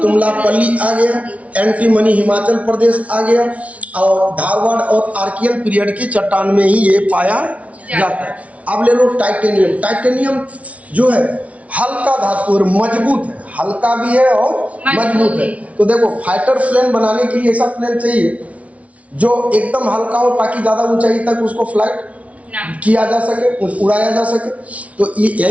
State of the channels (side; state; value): left; late; 0.066 ms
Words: आ गया, एंटीमनी हिमाचल प्रदेश आ गया, और धारवाड़ और आर्कियन पीरियड की चट्टान में ही ये पाया जाता है। अब ले लो टाइटेनियम। टाइटेनियम जो है हल्का धातु और मजबूत है, हल्का भी है और मजबूत है। तो देखो, फाइटर प्लेन बनाने के लिए ऐसा प्लेन चाहिए जो एकदम हल्का हो ताकि ज्यादा ऊंचाई तक उसको फ्लाइट किया जा सके, उड़ाया जा सके। तो